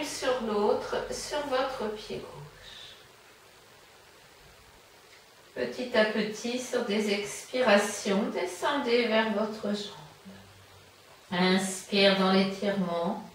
sur l'autre sur votre pied gauche. Petit à petit, sur des expirations, descendez vers votre jambe. Inspire dans l'étirement.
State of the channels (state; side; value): identical; both; correlation 1.00